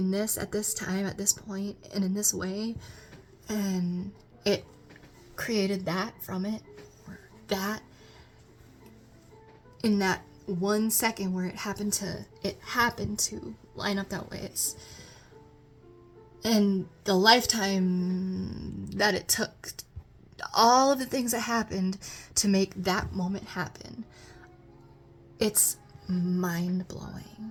this at this time, at this point, and in this way, and it created that from it, or that, in that 1 second where it happened to line up that way. And the lifetime that it took, all of the things that happened to make that moment happen, it's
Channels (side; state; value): both; identical; correlation 1.00